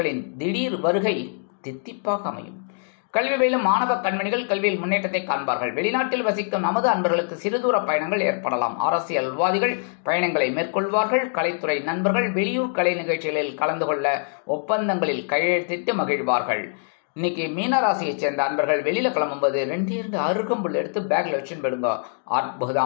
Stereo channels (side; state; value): right; silent; digital silence